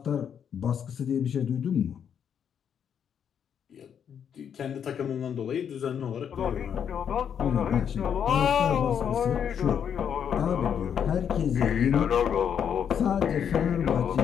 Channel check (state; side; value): quieter; right; 8.2 dB